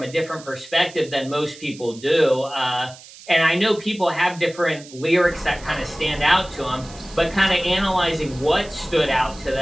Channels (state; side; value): noise; right; hiss, 19 dB below the sound